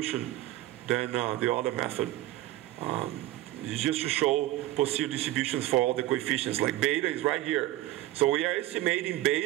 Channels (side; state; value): left; quieter; 15.7 dB